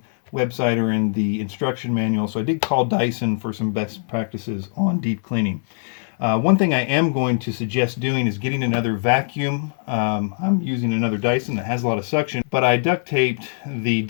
website or in the instruction manual, so I did call Dyson for some best practices on deep cleaning. One thing I am going to suggest doing is getting another vacuum. I'm using another Dyson that has a lot of suction, but I duct taped the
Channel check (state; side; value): silent; right; 64 dB below the other